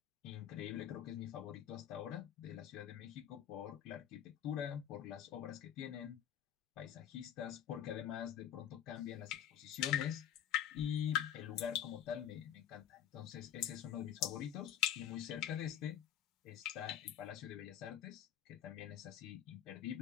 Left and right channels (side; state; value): right; quieter; 10.0 dB